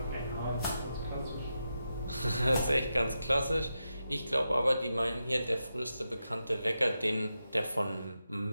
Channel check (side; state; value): both; inverted; correlation -0.88